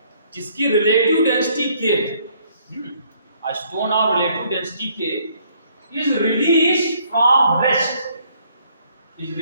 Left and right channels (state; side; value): inverted; both; correlation -0.65